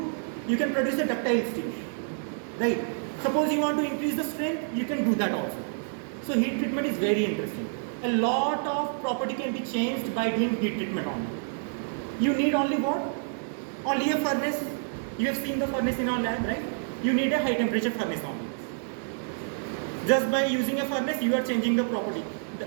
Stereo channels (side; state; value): left; silent; digital silence